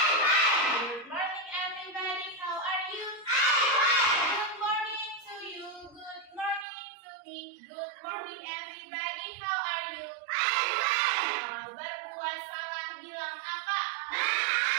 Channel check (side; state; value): left; drops out; at 6.7 s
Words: morning everybody, how are you? Good morning to you, good morning to me. Good morning everybody, how are you? Kalau berbuat salah bilang apa?